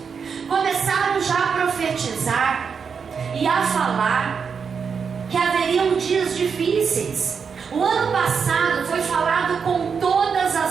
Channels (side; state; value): left; quieter; 6.1 dB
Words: começaram já a profetizar e a falar que haveriam dias difíceis. O ano passado foi falado com todas